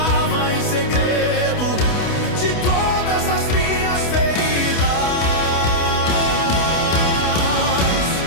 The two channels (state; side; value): late; right; 28 ms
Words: em segredo de todas as minhas feridas.